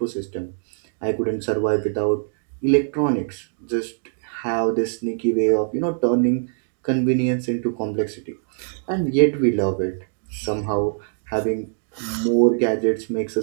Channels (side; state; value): left; silent; digital silence